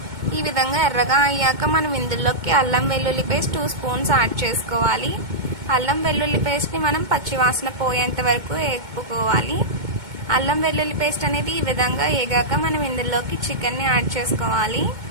ఈ విధంగా ఎర్రగా అయ్యాక మనం ఇందులోకి అల్లం వెల్లుల్లి పేస్ట్ 2 స్పూన్స్ యాడ్ చేసుకోవాలి. అల్లం వెల్లుల్లి పేస్ట్ని మనం పచ్చివాసన పోయేంత వరకు వేపుకోవాలి. అల్లం వెల్లుల్లి పేస్ట్ అనేది ఈ విధంగా వేగాక మనం ఇందులోకి చికెన్ని యాడ్ చేసుకోవాలి.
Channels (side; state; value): left; late; 2.2 ms